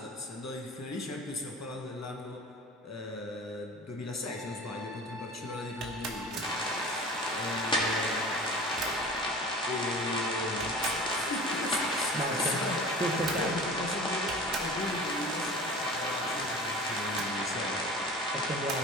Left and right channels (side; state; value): both; normal; correlation 0.39